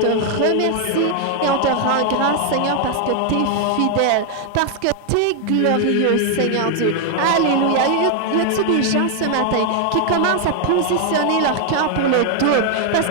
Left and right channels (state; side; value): different; both; correlation 0.00